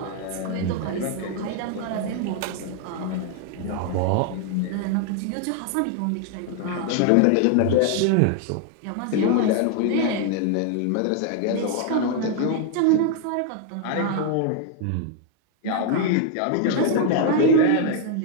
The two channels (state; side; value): different; both; correlation 0.00